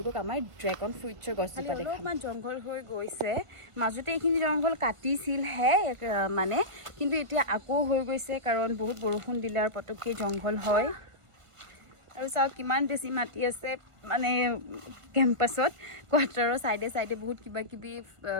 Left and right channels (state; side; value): late; left; 1.5 ms